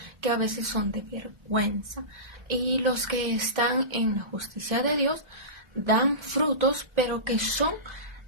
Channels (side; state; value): left; late; 1.2 ms